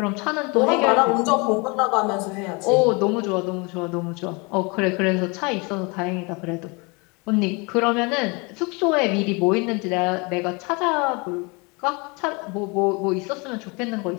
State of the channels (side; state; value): right; quieter; 29.2 dB